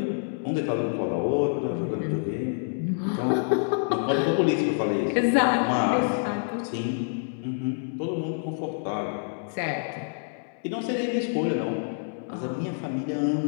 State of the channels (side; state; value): right; silent; digital silence